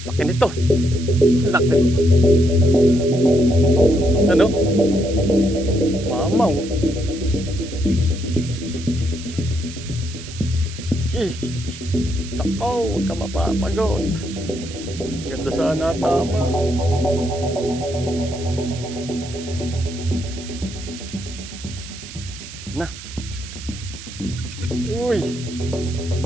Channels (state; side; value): noise; right; hiss, 14 dB below the sound